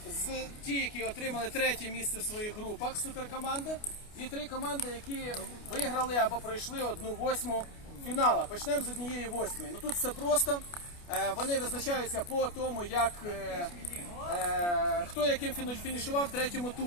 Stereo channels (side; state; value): right; late; 29 ms